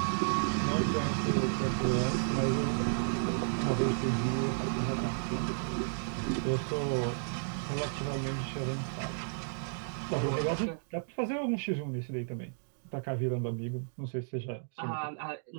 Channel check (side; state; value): left; silent; digital silence